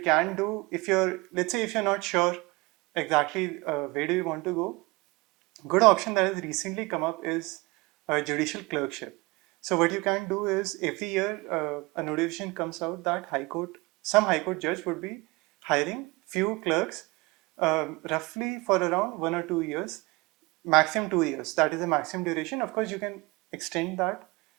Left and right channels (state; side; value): quieter; left; 24.1 dB